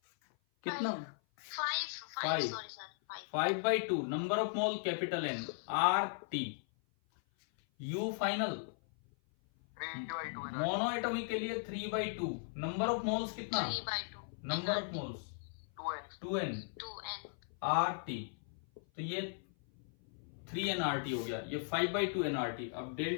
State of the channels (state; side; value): silent; right; 53 dB below the other